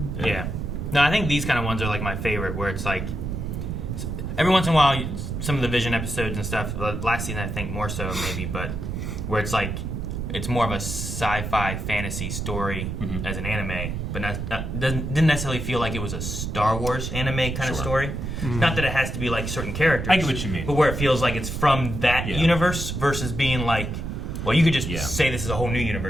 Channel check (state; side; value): noise; right; rumble, 4 dB below the sound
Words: No, I think these kind of ones are like my favorite, where it's like every once in a while, some of the Vision episodes and stuff, last season I think more so maybe, but where it's like, it's more of a sci-fi fantasy story as an anime, but didn't necessarily feel like it was a Star Wars anime kind of story. Not that it has to be like certain characters. I get what you mean. But where it feels like it's from that universe versus being like, well, you could just say this is a whole new